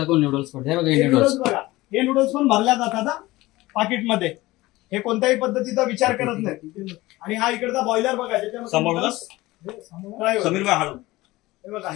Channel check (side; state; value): right; quieter; 19.1 dB